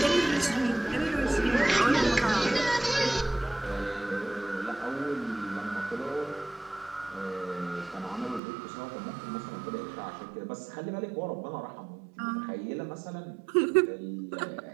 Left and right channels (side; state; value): left; drops out; at 8.4 s